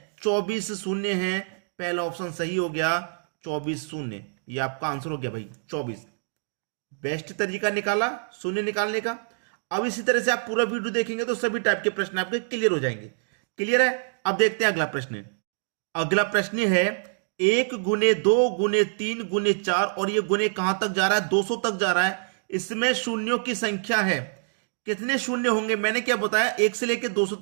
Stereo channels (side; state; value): left; silent; digital silence